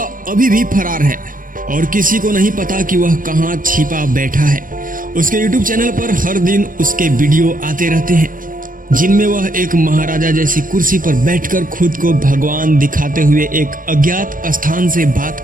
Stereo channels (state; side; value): late; left; 0.40 ms